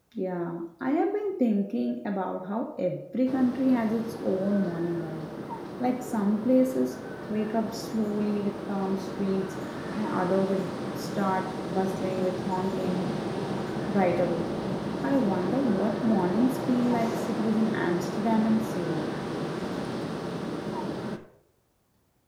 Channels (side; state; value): both; identical; correlation 1.00